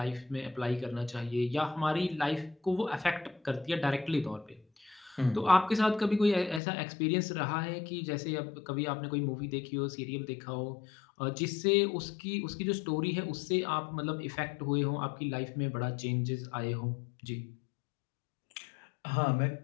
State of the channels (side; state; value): right; drops out; at 6.6 s